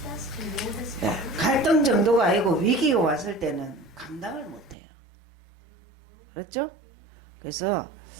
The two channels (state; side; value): drops out; left; at 4.8 s